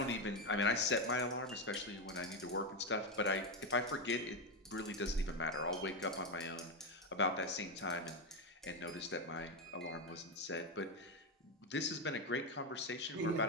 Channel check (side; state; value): both; normal; correlation 0.08